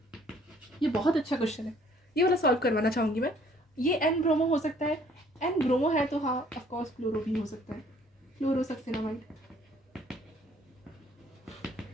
ये बहुत अच्छा क्वेश्चन है, ये वाला सॉल्व करवाना चाहूंगी मैं। ये एन ब्रोमो हो सकता है, एन ब्रोमो है तो हाँ ऑफ कोर्स क्लोरो भी हो सकता है, क्लोरोसक्सिनामाइड,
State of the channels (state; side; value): normal; both; correlation 0.60